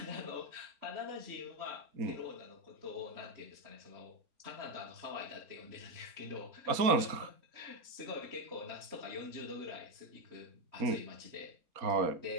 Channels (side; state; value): left; late; 4.2 ms